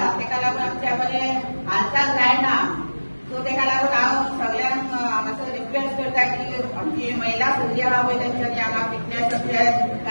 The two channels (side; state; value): both; inverted; correlation -1.00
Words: तेका लागून आमच्या बरें हालचाल जायना. सो तेका लागून हांव सगळ्यांक मातसो रिक्वेस्ट करता की आमची महिला सगळी आहा पळय तेंच्यांनी हांगा फिटनेसाचे